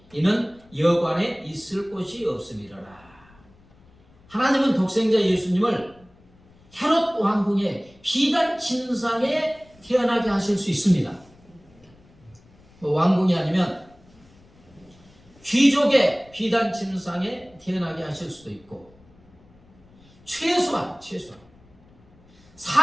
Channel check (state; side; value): noise; left; rumble, 28 dB below the sound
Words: 이는 여관에 있을 곳이 없음이로라. 하나님은 독생자 예수님을 헤롯 왕궁의 비단 침상에 태어나게 하실 수 있습니다. 왕궁이 아니면 귀족의 비단 침상에 태어나게 하실 수도 있고, 최소한